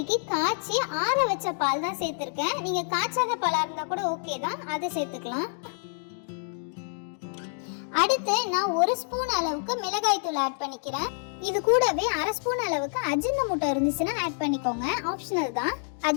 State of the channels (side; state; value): right; silent; digital silence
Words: காய்ச்சி ஆற வச்ச பால் தான் சேர்த்திருக்கேன். நீங்க காய்ச்சாத பாலா இருந்தா கூட ஓகே தான், அதை சேர்த்துக்கலாம். அடுத்து நான் 1 ஸ்பூன் அளவுக்கு மிளகாய் தூள் ஆட் பண்ணிக்கிறேன். இது கூடவே 1/2 ஸ்பூன் அளவுக்கு அஜினமோட்டோ இருந்துச்சுன்னா ஆட் பண்ணிக்கோங்க, ஆப்ஷனல் தான்.